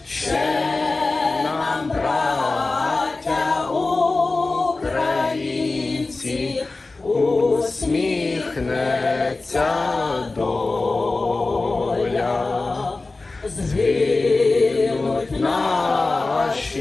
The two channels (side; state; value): right; quieter; 3.5 dB